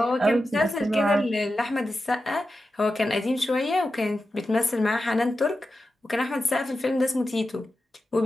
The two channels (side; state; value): both; normal; correlation 0.91